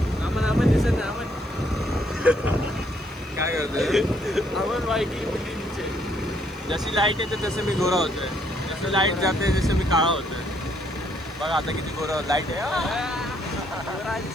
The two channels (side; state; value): right; noise; hiss, 29 dB below the sound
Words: आपण दिसत नाही. आपण काय करतोय? आपण बाईकिंग मुलींचे. जशी लाईट येते तसं मी गोरा होतोय. जसं लाईट जाते तसं मी काळा होतोय. बघा आता किती गोरा लाईट आहे.